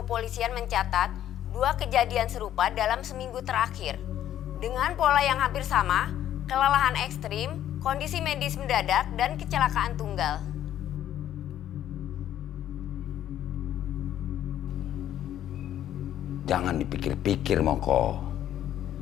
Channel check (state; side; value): quieter; right; 11.5 dB